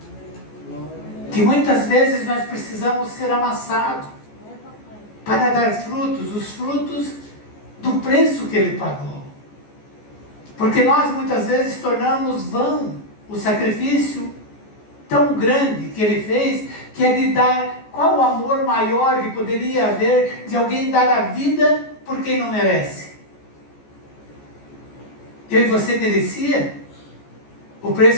Que muitas vezes nós precisamos ser amassados para dar frutos, os frutos do preço que ele pagou. Porque nós muitas vezes tornamos vão o sacrifício tão grande que ele fez, que é de dar, qual o amor maior que poderia haver de alguém dar a vida por quem não merece? Eu e você merecia o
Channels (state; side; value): late; right; 14 ms